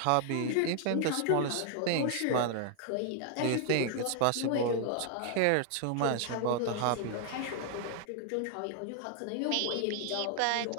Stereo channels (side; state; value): both; different; correlation 0.00